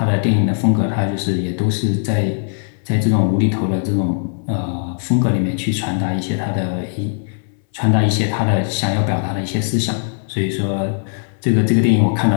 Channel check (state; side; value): silent; right; 64 dB below the other